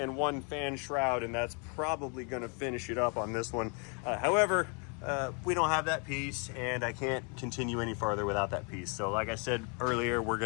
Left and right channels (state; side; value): quieter; right; 36.3 dB